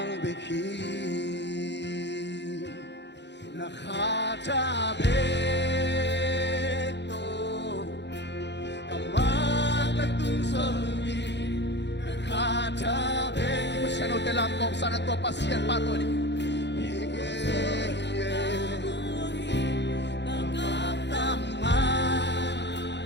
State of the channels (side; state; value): right; late; 0.51 ms